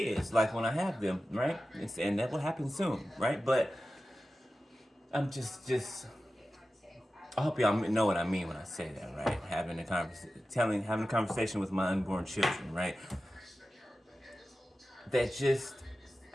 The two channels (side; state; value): both; normal; correlation 0.94